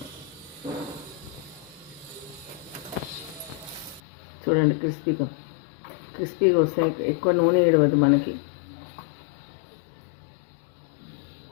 చూడండి క్రిస్పీగా వస్తాయి. ఎక్కువ నూనె ఏడవద్దు మనకి.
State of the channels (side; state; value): right; drops out; at 4.0 s